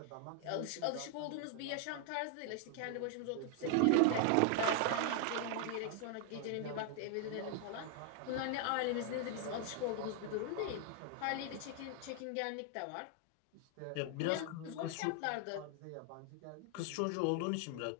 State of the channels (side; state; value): both; different; correlation 0.00